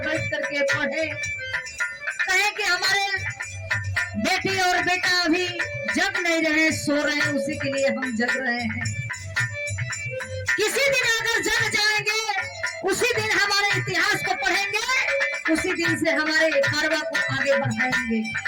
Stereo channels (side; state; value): both; identical; correlation 1.00